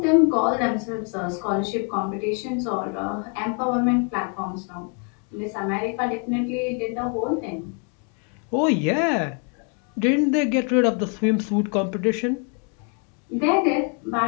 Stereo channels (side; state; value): right; quieter; 39.5 dB